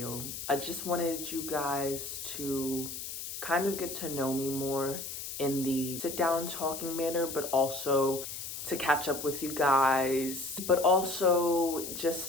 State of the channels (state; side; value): noise; left; hiss, 7 dB below the sound